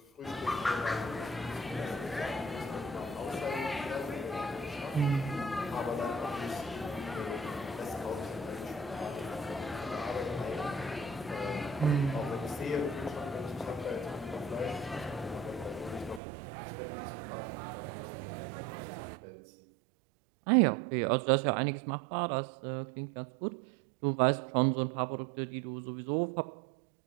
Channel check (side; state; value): left; drops out; at 16.2 s